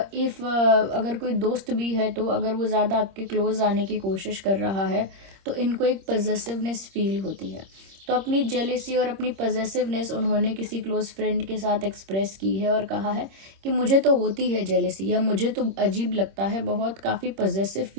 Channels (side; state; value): left; late; 26 ms